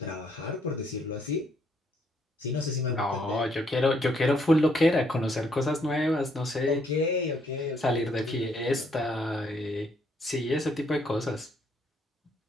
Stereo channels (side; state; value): both; normal; correlation 0.70